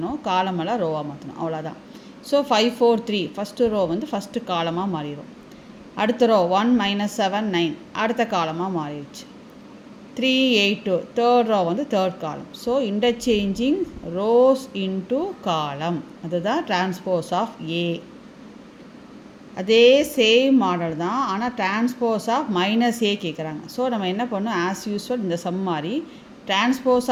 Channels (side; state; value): both; identical; correlation 1.00